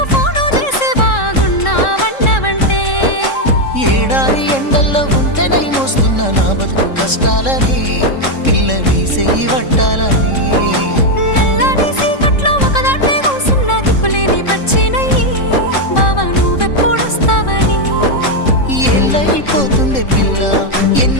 ఫోను చేసే బాగున్నావన్నవంటే ఏడాది ఎండల్లో ఉంటేనై మోస్తున్న నా బతుకు కష్టాలని పిల్లని చెయ్యి పట్టాలని. నల్లని సీకట్లో ఒకదాన్నే కూసున్న దిక్కులేని పచ్చినయ్యి బావా నువ్వెప్పుడొస్తావని. ఏళ్ళైపోతుండే పిల్ల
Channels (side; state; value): right; late; 3.7 ms